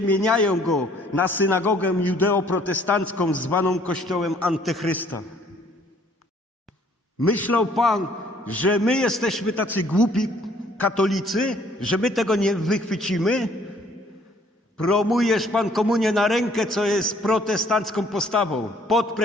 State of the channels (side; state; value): both; normal; correlation 0.60